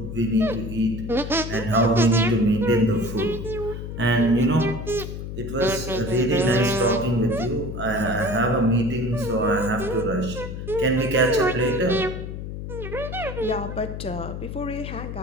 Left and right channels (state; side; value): noise; left; hum, 7 dB below the sound